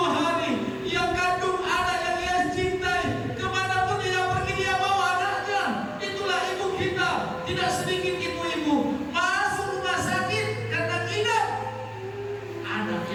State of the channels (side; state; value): both; identical; correlation 1.00